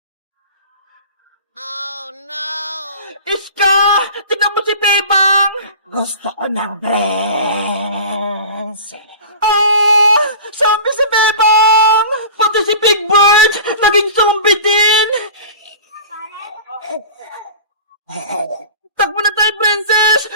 Oh no! Iska! Tignan mo si Bebang! Gusto ko ng dress. Zombie si Bebang! Pati si Big Bird! Naging zombie din! Takbo na tayo, Princess!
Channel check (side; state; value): both; inverted; correlation -0.37